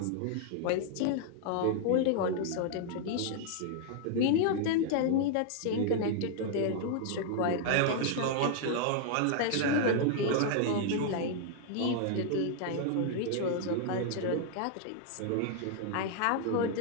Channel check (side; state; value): both; different; correlation 0.00